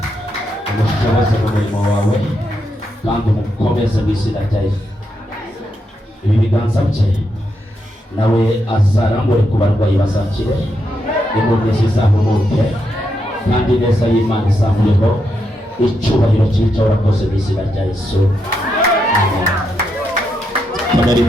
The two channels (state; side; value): normal; both; correlation 0.82